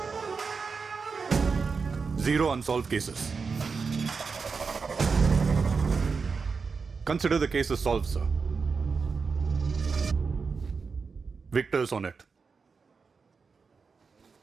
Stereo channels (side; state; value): left; quieter; 5.0 dB